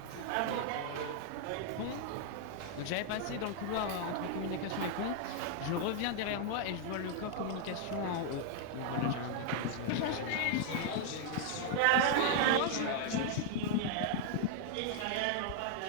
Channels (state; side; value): different; both; correlation 0.00